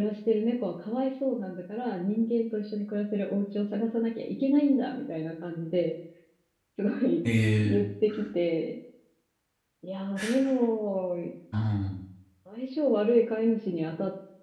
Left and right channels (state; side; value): identical; both; correlation 1.00